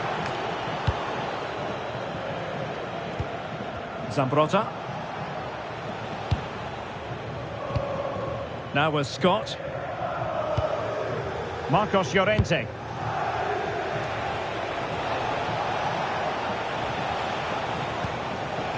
Zambrotta. Now with Scott. Marcos Llorente.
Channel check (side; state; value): both; identical; correlation 1.00